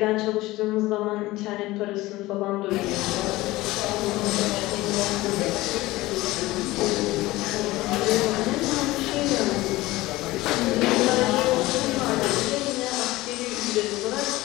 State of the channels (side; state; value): right; quieter; 18.7 dB